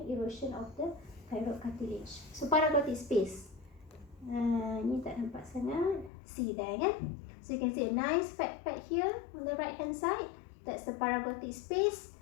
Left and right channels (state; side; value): drops out; right; at 6.1 s